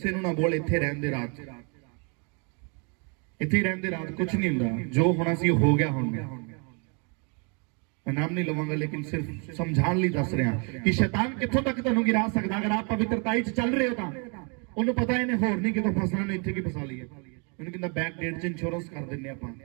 ਨੂੰ ਨਾ ਬੋਲ, ਇੱਥੇ ਰਹਿਣ ਦੇ ਰਾਤ, ਇੱਥੇ ਰਹਿਣ ਦੇ ਰਾਤ, ਕੁਝ ਨਹੀਂ ਹੁੰਦਾ, ਜੋ ਹੋਣਾ ਸੀ ਹੋ ਗਿਆ। ਹੁਣ ਮੈਂ ਨਾਮ ਨਹੀਂ ਲਵਾਂਗਾ ਲੇਕਿਨ ਸਿਰਫ ਸਮਝਾਉਣ ਲਈ ਦੱਸ ਰਿਹਾ ਕਿ ਸ਼ੈਤਾਨ ਕਿੱਥੋਂ ਤੱਕ ਤੁਹਾਨੂੰ ਗਿਰਾ ਸਕਦਾ। ਅਗਰ ਆਪ ਪਵਿੱਤਰਤਾਈ 'ਚ ਚੱਲ ਰਹੇ ਹੋ ਤਾਂ ਉਹਨੂੰ ਪਤਾ ਇਹਨੇ ਹੋਰ ਨਹੀਂ ਕਿਤੋਂ ਫਸਣਾ, ਨੇ ਇੱਥੇ ਕੀ ਫਸਾ ਲਈਏ। ਉਹਨੂੰ ਕਹਿੰਦਾ ਬੈਕ ਡੇਟ 'ਚ ਇੰਸ਼ੋਰੈਂਸ ਕਰ ਦਿੰਨੇ ਆਪਾਂ,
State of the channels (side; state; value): left; quieter; 36.0 dB